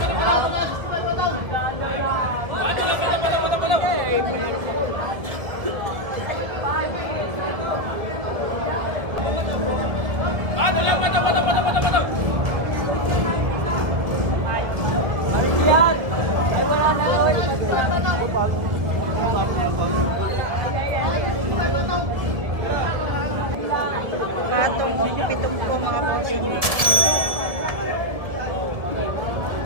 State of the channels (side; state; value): left; late; 1.7 ms